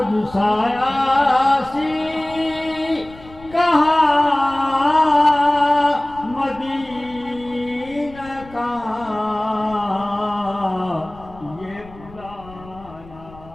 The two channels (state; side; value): noise; left; rumble, 21 dB below the sound